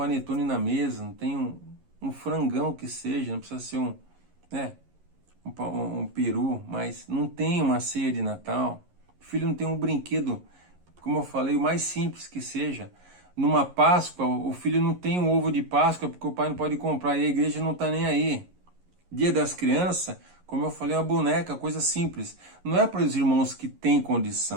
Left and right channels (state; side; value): late; left; 11 ms